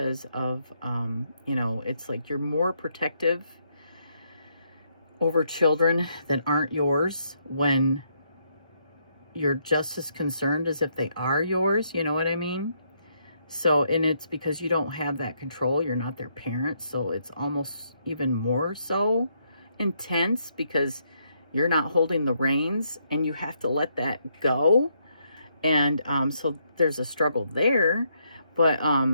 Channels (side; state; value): both; inverted; correlation -0.75